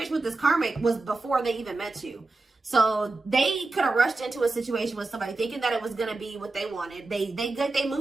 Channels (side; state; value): left; quieter; 3.3 dB